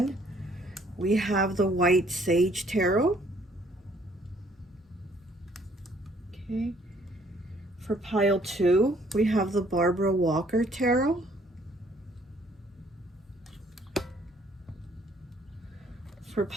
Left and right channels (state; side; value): normal; both; correlation 0.62